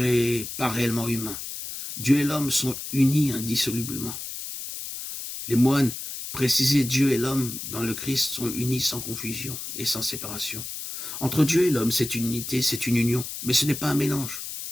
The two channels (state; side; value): noise; left; hiss, 8 dB below the sound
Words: pas réellement humain. Dieu et l'homme sont unis indissolublement. Les moines précisaient Dieu et l'homme dans le Christ sont unis sans confusion et sans séparation. Entre Dieu et l'homme, c'est une unité, c'est une union, mais ce n'est pas un mélange.